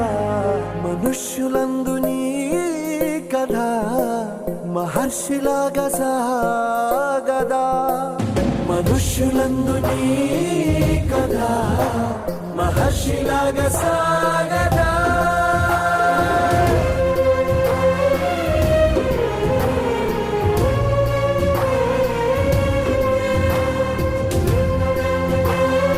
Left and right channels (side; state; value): both; identical; correlation 1.00